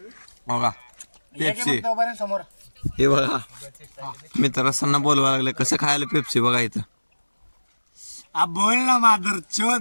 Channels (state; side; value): inverted; both; correlation -1.00